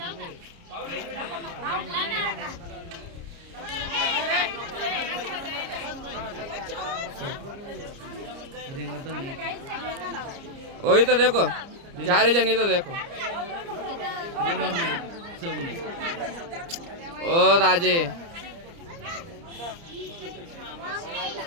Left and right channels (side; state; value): left; late; 29 ms